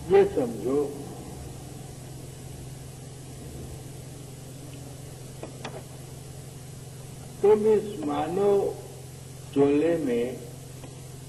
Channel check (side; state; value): both; identical; correlation 1.00